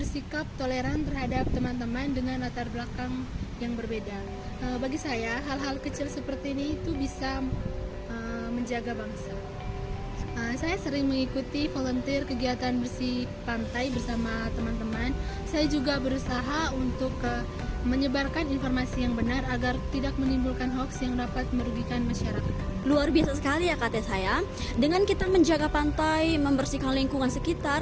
toleran terhadap teman-teman dengan latar belakang yang berbeda. Bagi saya, hal-hal kecil seperti ini itu bisa menjaga bangsa. Saya sering mengikuti volunteer kegiatan bersih pantai bersama teman-teman. Saya juga berusaha untuk menyebarkan informasi yang benar agar tidak menimbulkan hoaks yang dapat merugikan masyarakat. Luar biasa sekali ya kata saya. Dengan kita menjaga pantai, membersihkan lingkungan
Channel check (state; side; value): identical; both; correlation 1.00